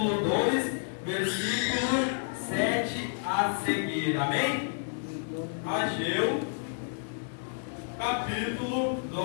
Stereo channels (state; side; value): silent; right; 58 dB below the other